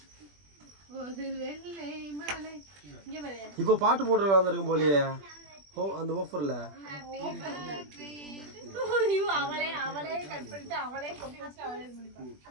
இப்ப பாட்டு போட்டு வந்திருக்கும் போலியே. ஓ அந்த ஆஃபர்ல அவளே கட் பண்ணிட்டு அவளே கொப்பி வச்சு அவளே இது பண்ணிப்பா.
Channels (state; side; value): late; left; 20 ms